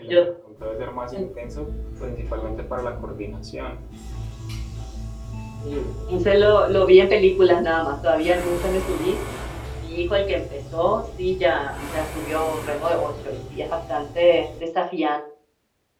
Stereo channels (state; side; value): identical; both; correlation 1.00